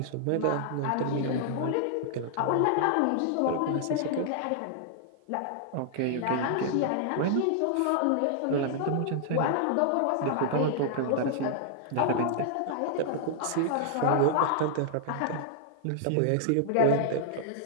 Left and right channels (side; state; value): both; different; correlation -0.01